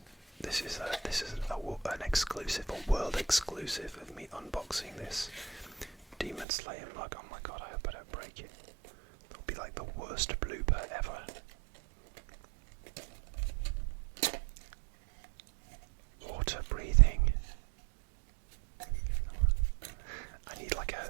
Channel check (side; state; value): left; drops out; at 6.5 s